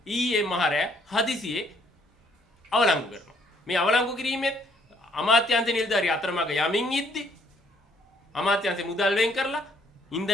ඊයේ මහරෑ හදිසියේ අවලංගු කරනවා. මේ අවලංගු කිරීමෙත් අමාත්‍යාංශ නිලධාරී අතරමඟ යමින් ඉද්දි අමාත්‍යාංශ මුදල් වෙන් කරලා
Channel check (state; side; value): normal; both; correlation 0.66